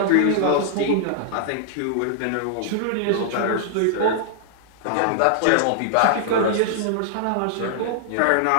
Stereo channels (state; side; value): different; both; correlation -0.01